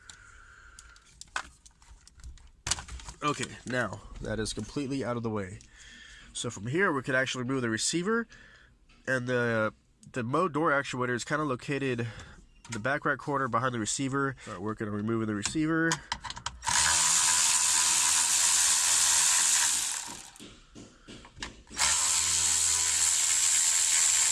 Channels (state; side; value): identical; both; correlation 1.00